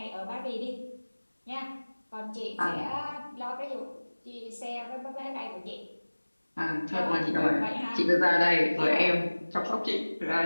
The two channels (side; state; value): both; inverted; correlation -1.00